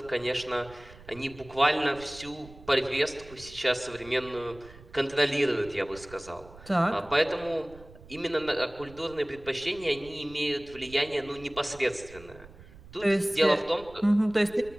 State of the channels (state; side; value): noise; right; rumble, 20 dB below the sound